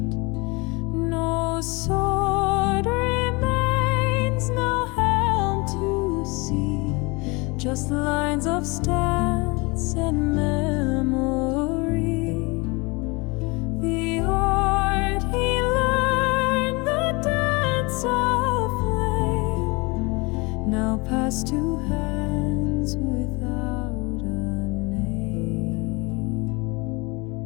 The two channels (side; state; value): right; quieter; 26.8 dB